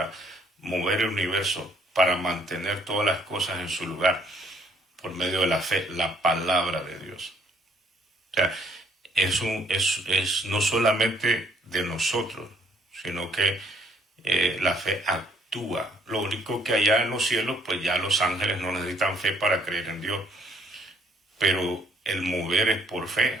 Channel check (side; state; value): both; normal; correlation 0.65